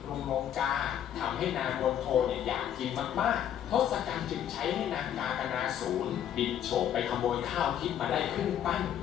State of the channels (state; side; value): quieter; right; 10.1 dB